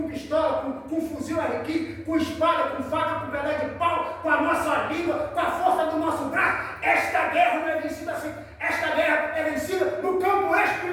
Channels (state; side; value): identical; both; correlation 1.00